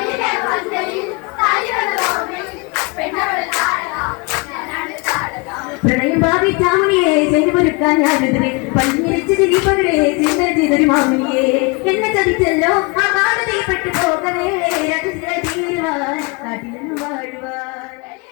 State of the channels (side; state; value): right; quieter; 29.4 dB